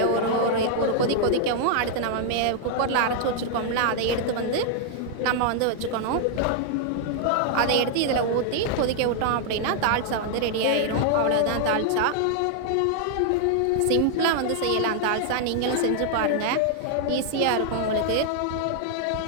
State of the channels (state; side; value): different; both; correlation 0.00